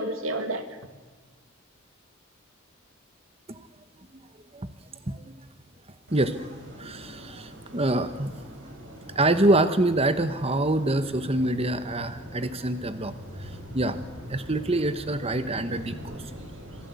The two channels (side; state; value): both; normal; correlation 0.49